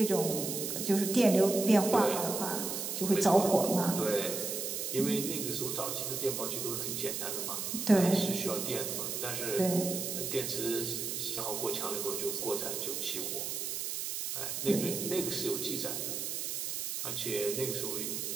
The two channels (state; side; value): noise; right; hiss, 3 dB below the sound